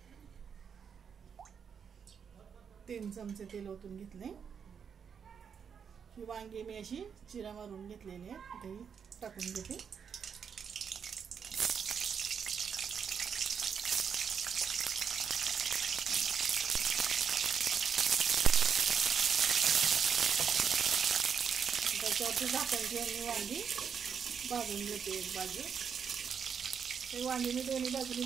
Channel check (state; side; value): quieter; left; 7.0 dB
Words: 3 चमचे तेल ओतून घेतले। ही वांगी मी अशी चिरा मारून घेतलेली आहे, ते टाकून घेते। त्याच्यावरती झाकण ठेवून वांगी भाजून घेते एक बाजू। हे वांगी मी दोन्ही बाजूनी